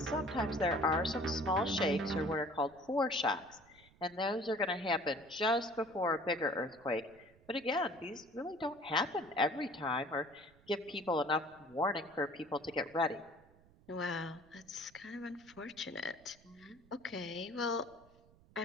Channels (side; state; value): right; noise; rumble, 27 dB below the sound